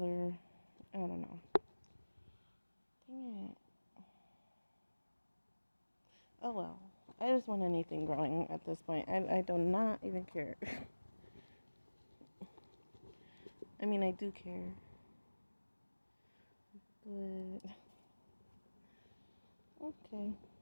I don't know. Dang it. Oh well. I just want anything growing at this point. I do not even care. I mean, I do care. But okay.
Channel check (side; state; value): both; inverted; correlation -1.00